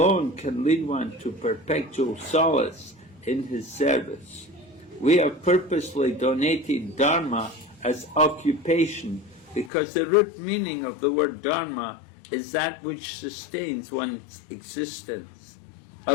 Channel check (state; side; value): drops out; right; at 9.7 s